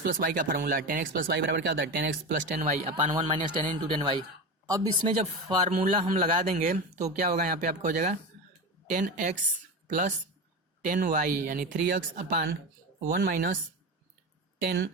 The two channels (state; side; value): normal; both; correlation 0.23